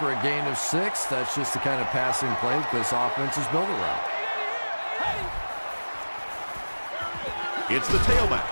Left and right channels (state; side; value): inverted; both; correlation -1.00